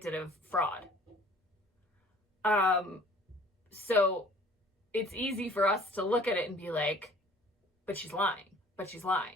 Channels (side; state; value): both; normal; correlation 0.52